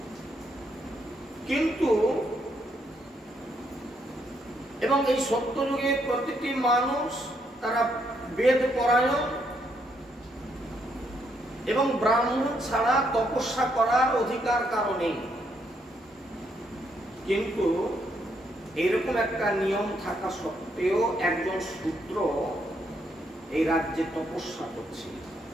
কিন্তু এবং এই সত্য যুগে প্রতিটি মানুষ তারা বেদ পরায়ণ এবং ব্রাহ্মণ ছাড়া তপস্যা করার অধিকার কারণে। কিন্তু এরকম একটা নিয়ম থাকা সত্ত্বেও একজন শূদ্র এই রাজ্যে তপস্যা করছে,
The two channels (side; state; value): both; normal; correlation 0.75